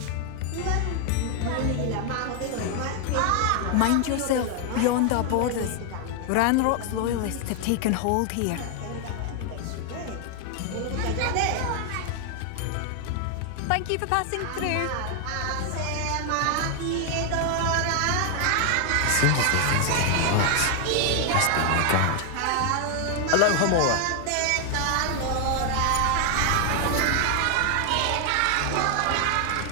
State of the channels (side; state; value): both; different; correlation 0.00